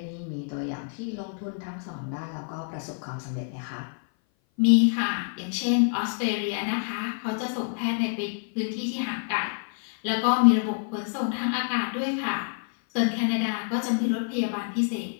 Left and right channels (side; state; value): right; silent; 57 dB below the other